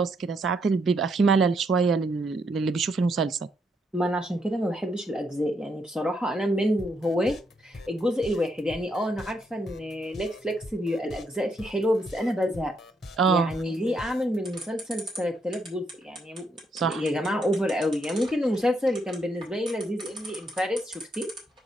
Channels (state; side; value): normal; both; correlation 0.76